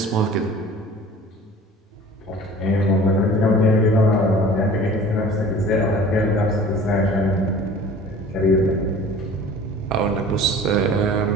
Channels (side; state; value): both; normal; correlation 0.45